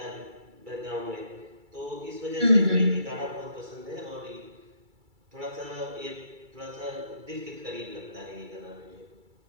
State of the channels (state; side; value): late; left; 2.3 ms